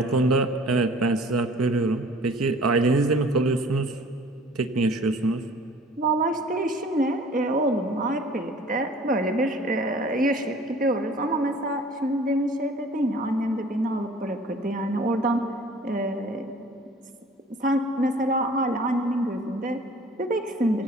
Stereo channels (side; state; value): both; normal; correlation 0.49